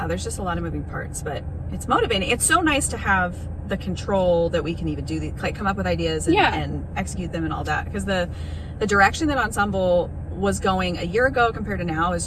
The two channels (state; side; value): identical; both; correlation 1.00